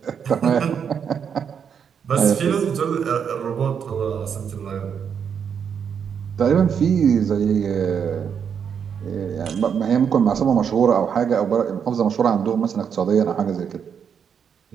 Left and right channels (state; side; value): quieter; left; 7.4 dB